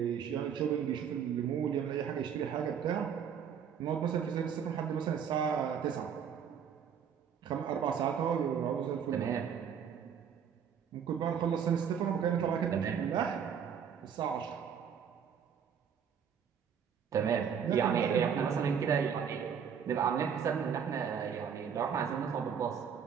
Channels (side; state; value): left; quieter; 7.6 dB